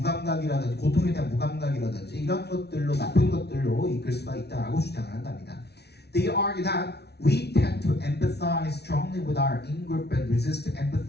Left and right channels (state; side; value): late; right; 0.49 ms